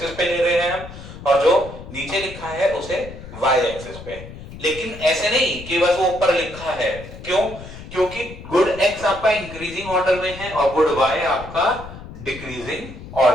पे ले रहे हैं हम, और जो नीचे लिखा है उसे वाई एक्सिस पे। लेकिन ऐसे नहीं कि बस वो ऊपर लिखा है, क्यों? क्योंकि गुड एक्स आपका इंक्रीजिंग ऑर्डर में है और गुड वाई आपका डिक्रीजिंग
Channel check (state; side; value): noise; left; rumble, 14 dB below the sound